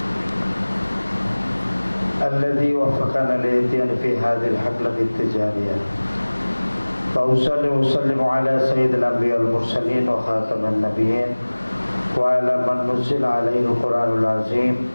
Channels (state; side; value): inverted; both; correlation -1.00